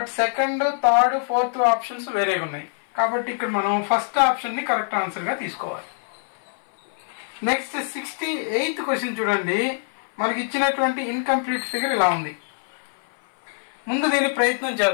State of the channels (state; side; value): silent; right; 60 dB below the other